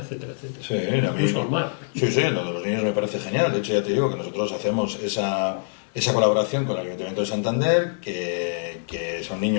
etcétera. Sí, a mí, sí, lo de los niños me parece genial. De hecho, ya te digo que nosotros hacemos esa colaboración con el Ayuntamiento de Santander, que son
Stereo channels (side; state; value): right; silent; digital silence